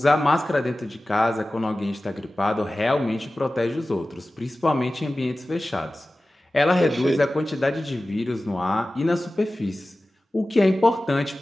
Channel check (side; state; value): both; normal; correlation 0.96